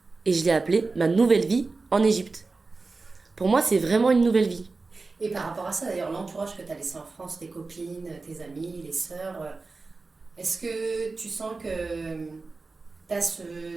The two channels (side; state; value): left; quieter; 3.8 dB